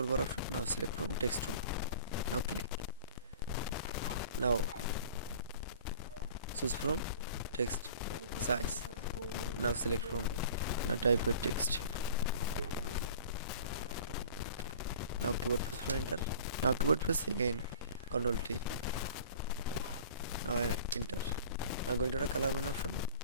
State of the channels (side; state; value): both; inverted; correlation -0.44